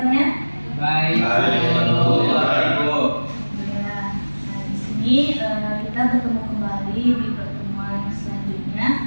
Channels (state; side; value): inverted; both; correlation -1.00